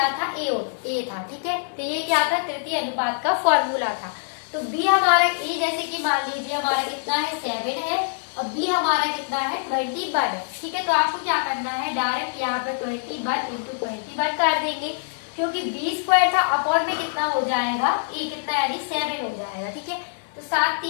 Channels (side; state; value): right; silent; digital silence